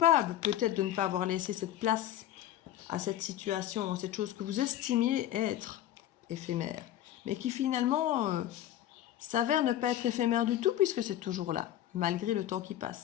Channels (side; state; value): right; quieter; 12.4 dB